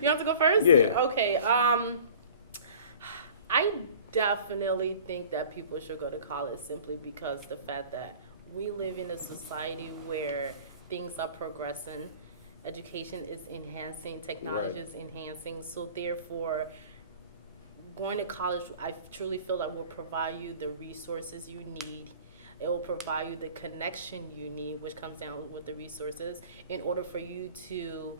You have to go first. Yeah. Okay. I definitely think that people should go to college simply because the fact that we live in a society where things are progressing, education is enhancing, technology is enhancing. So therefore, going to college, I truly feel like will provide you the resources you need. It will provide you the connection you need, which comes down with the resources, in order for you to,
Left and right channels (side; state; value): both; inverted; correlation -0.45